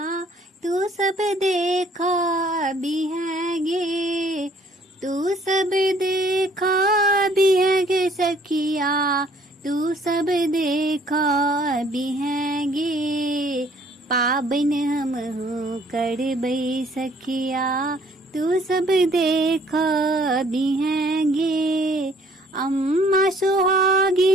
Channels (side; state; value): both; normal; correlation 0.60